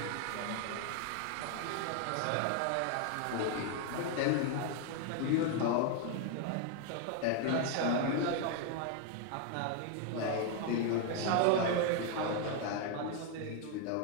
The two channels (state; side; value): different; both; correlation 0.01